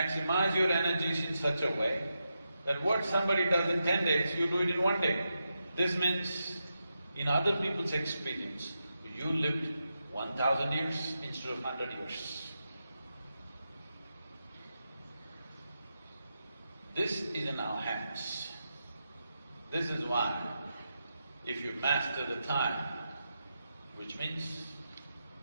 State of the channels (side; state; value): both; inverted; correlation -0.87